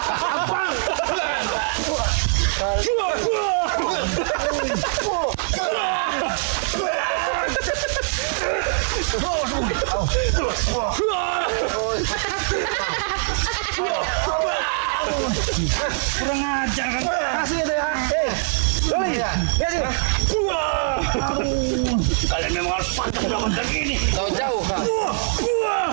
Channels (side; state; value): left; silent; 62 dB below the other